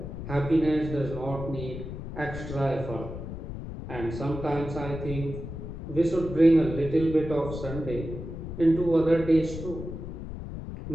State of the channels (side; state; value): left; noise; rumble, 8 dB below the sound